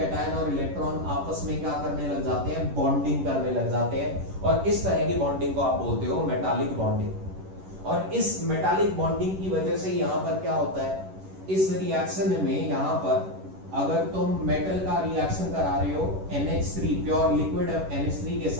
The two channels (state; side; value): late; left; 11 ms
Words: और इलेक्ट्रॉन आपस में क्या करने लग जाते हैं, बॉन्डिंग करने लग जाते हैं, और इस तरह की बॉन्डिंग को आप बोलते हो मेटालिक बॉन्डिंग। और इस मेटालिक बॉन्डिंग की वजह से यहां पर क्या होता है, इस रिएक्शन में यहां पर अगर तुम मेटल का रिएक्शन करा रहे हो NH3 प्योर लिक्विड NH3 के